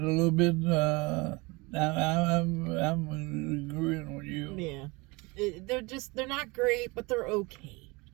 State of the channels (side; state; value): left; quieter; 25.8 dB